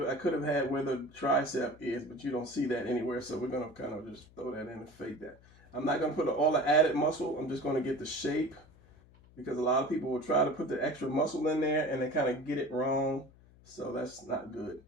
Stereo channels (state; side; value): noise; left; hum, 25 dB below the sound